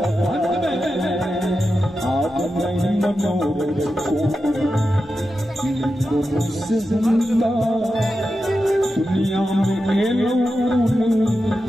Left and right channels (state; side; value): normal; both; correlation 0.90